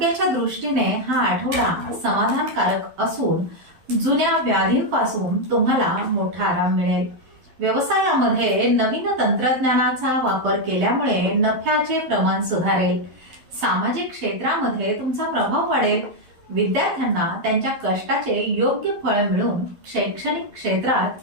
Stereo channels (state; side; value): late; left; 12 ms